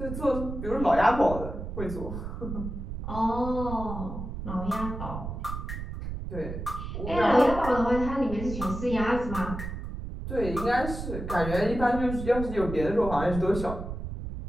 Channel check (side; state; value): right; noise; rumble, 7 dB below the sound